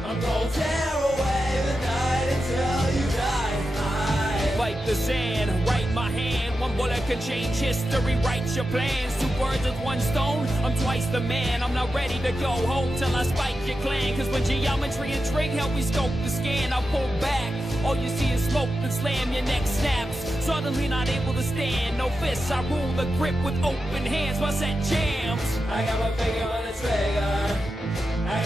I'm gonna tear away the night until you die. Fight the sand, write my hand. One bullet can change history, write your plans. Two birds with one stone, I'm twice the man. I'm not ready to go home till I spike your clan. Cause when geometry and trig help me scope the scan, I pull back, all you see is smoke and slam, your neck snaps. Suddenly not able to stand, no fists, I rule the grip with open hands. My set jams. I got my finger on the trigger. I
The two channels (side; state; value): both; normal; correlation 0.90